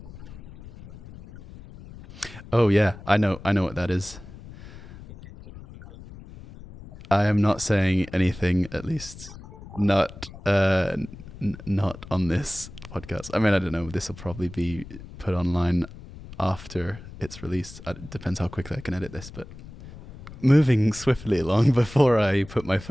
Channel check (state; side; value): noise; left; rumble, 16 dB below the sound